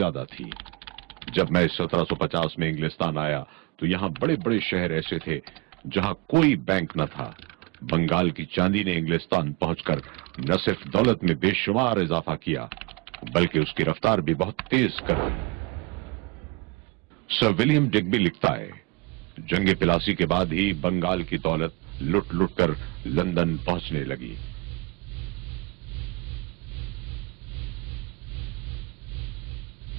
تھی۔ جب میں 1750 میں انگلستان آیا تو یہاں بڑے بڑے شہر ایسے تھے جہاں کوئی بینک نہ تھا۔ بنگال کی چاندی نے انگلستان پہنچ کر نہ صرف دولت میں بے شمار اضافہ کیا بلکہ اس کی رفتار بھی بہت تیز کر دی۔ سر ولیم ڈگبی لکھتا ہے، جنگ پلاسی کے بعد ہی بنگال کی دولت لٹ لٹ کر لندن پہنچنے لگی۔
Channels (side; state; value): left; quieter; 25.8 dB